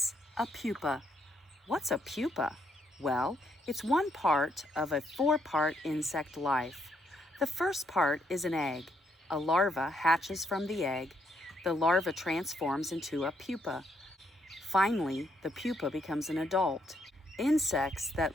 a pupa. What's a pupa? Well, it's one part of a four-part insect life. The first part is an egg. A larva hatches from the egg. The larva transforms into a pupa. Finally, the pupa becomes an adult. Insects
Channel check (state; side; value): normal; both; correlation 0.74